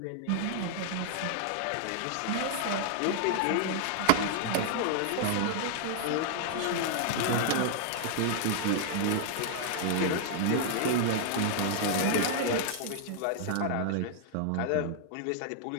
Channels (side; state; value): both; different; correlation -0.01